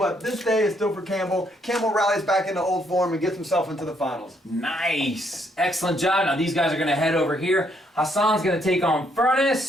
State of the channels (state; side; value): normal; both; correlation 0.71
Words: this day is still for Campbell. Campbell rallies back into old form and gets himself into the finals. Nice. Excellent job. Now these guys are going to head over here. Hassan's going to take on